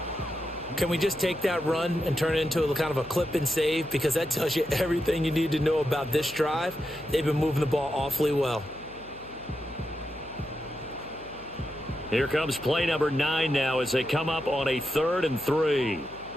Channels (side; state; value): left; noise; hum, 21 dB below the sound